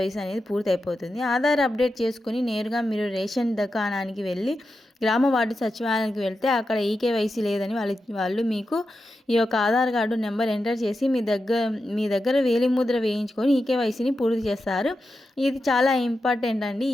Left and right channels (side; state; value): both; normal; correlation 0.89